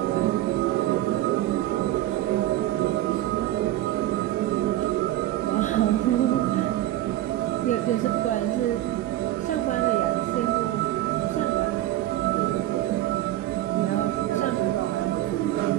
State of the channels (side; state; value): left; quieter; 14.4 dB